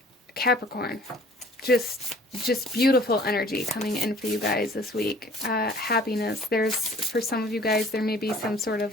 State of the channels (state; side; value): normal; both; correlation 0.52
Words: Capricorn, just beautiful energy coming in for you guys this week. Happiness. For some of you guys, there may be some sort